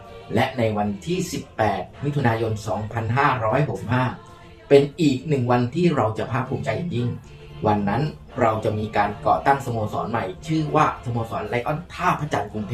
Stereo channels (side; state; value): both; identical; correlation 1.00